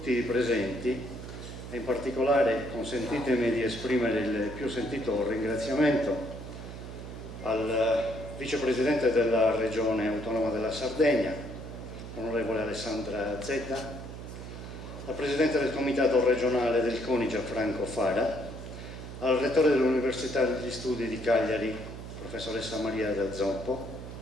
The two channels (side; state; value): right; noise; hum, 11 dB below the sound